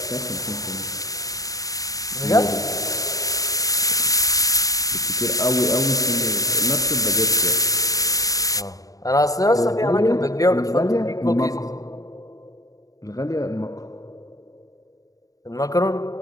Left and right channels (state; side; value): late; right; 0.17 ms